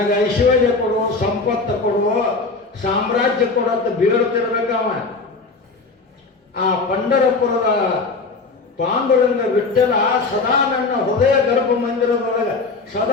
ಐಶ್ವರ್ಯ ಕೊಡು, ಸಂಪತ್ತು ಕೊಡು, ಸಾಮ್ರಾಜ್ಯ ಕೊಡು ಅಂತ ಬೀಳ್ತಿರ್ಬೇಕವ. ಆ ಪಂಢರಪುರದ ಪಾಂಡುರಂಗ ವಿಠಲ ಸದಾ ನನ್ನ ಹೃದಯ ಗರ್ಭ ಮಂದಿರದೊಳಗೆ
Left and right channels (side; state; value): right; quieter; 4.0 dB